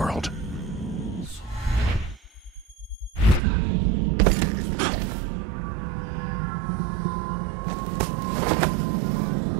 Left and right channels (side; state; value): left; drops out; at 3.4 s